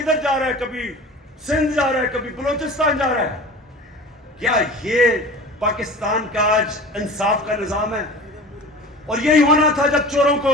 جا رہا ہے، کبھی سندھ جا رہا ہے، کبھی بلوچستان جا رہا ہے. کیا یہ پاکستان کا آج انصاف کا نظام ہے؟ اور یہی ہونا تھا جب چوروں کو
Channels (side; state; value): both; normal; correlation 0.38